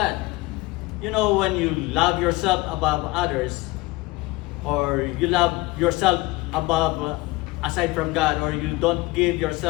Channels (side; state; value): right; quieter; 21.5 dB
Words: You know, when you love yourself above others, or you love yourself above aside from God, or you don't give